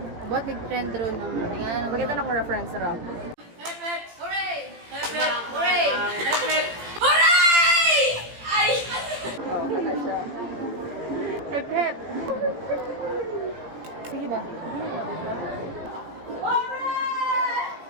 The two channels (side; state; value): left; late; 18 ms